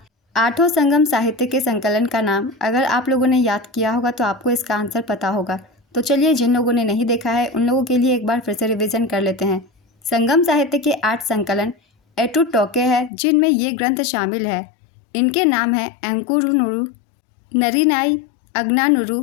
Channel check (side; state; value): right; drops out; at 13.1 s